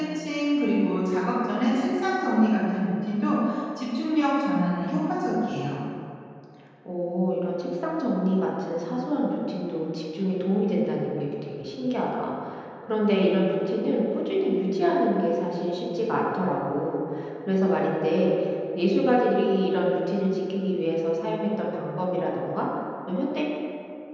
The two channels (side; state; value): both; identical; correlation 1.00